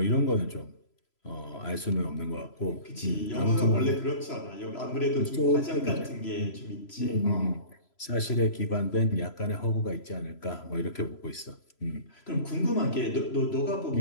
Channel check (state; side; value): late; right; 3.0 ms